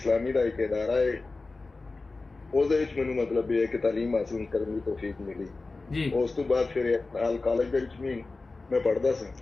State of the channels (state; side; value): quieter; right; 3.6 dB